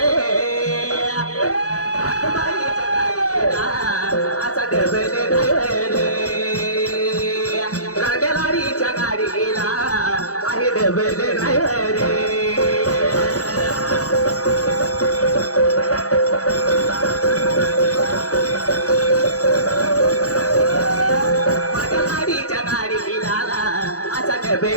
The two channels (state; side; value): late; right; 0.66 ms